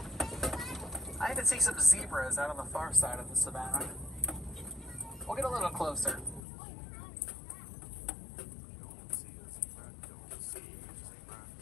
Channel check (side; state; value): right; drops out; at 6.4 s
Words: I even see some zebras out on the far side of the savannah. We'll get a little closer.